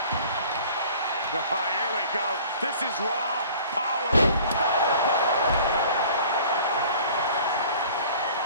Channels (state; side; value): inverted; both; correlation -0.48